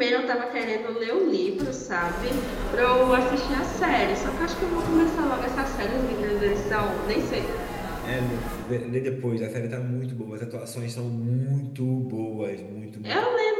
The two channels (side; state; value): both; identical; correlation 1.00